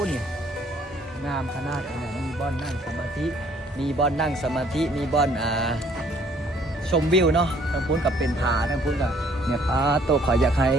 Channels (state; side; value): normal; both; correlation 0.61